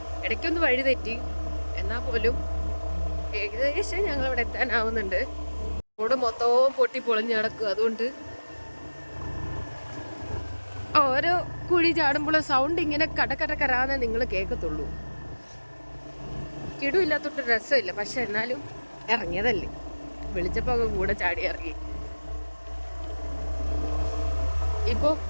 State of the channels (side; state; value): both; inverted; correlation -1.00